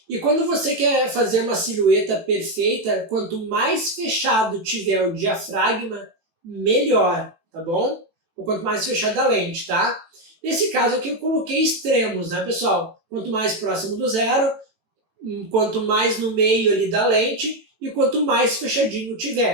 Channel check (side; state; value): left; late; 18 ms